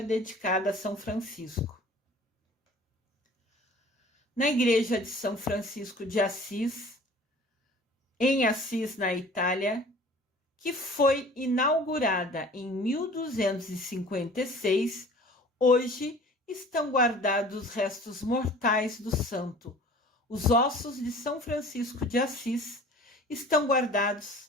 dedicada a São Francisco. Na igreja de São Francisco de Assis, em Assis, na Itália, que foi inaugurada em 1256, hoje estão guardados os restos mortais do santo. Os ossos de São Francisco de Assis estão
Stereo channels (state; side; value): normal; both; correlation 0.46